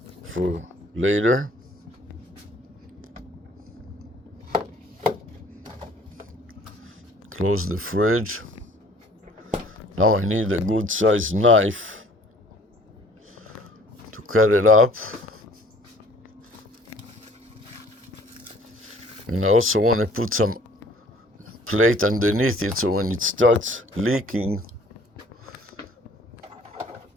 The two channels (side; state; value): both; normal; correlation 0.55